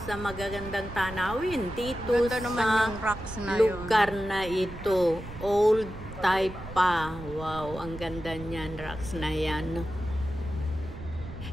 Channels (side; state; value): right; noise; rumble, 13 dB below the sound